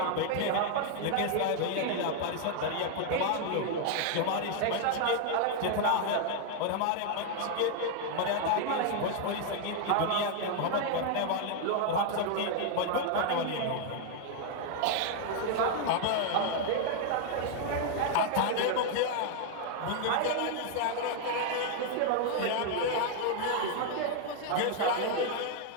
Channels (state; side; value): different; both; correlation 0.00